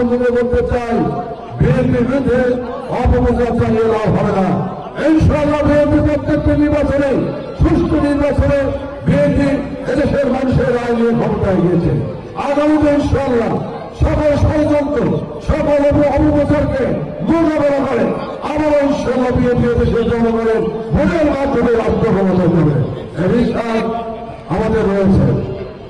করতে চাই। বিএনপির বিরুদ্ধে অপপ্রচার চালিয়ে লাভ হবে না। ইনশাআল্লাহ বিএনপি প্রত্যেকটি নির্বাচনে, সুষ্ঠু নির্বাচনে বিএনপি এদেশের মানুষের রায় নিয়ে ক্ষমতায় গিয়েছে। আগামীতে ইনশাআল্লাহ সকল ষড়যন্ত্র, সকল অপপ্রচারকে মোকাবেলা করে আবারও ইনশাআল্লাহ বিএনপি এদেশের জনগণের ভোটের মাধ্যমে রাষ্ট্র ক্ষমতায় যাবে, এই বিশ্বাস আমাদের রয়েছে।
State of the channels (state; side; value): identical; both; correlation 1.00